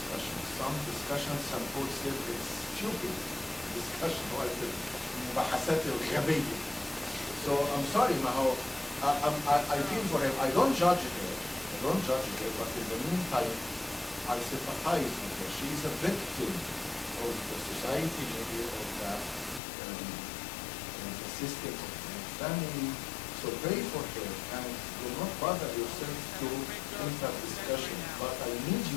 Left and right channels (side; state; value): right; drops out; at 19.6 s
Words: Some discussions, some folks say it's stupid discussion, like المباحثات الغبية. So I'm sorry, Maho. I feel for him. I don't judge her. But in the meantime, I sympathize with her. She is a victim of the society, maybe of the system of her family. So pray for her and do not bother yourself to enter discussion. But I need